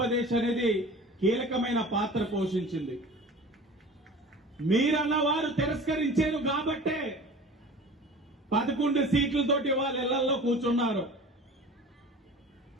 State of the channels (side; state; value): both; normal; correlation 0.40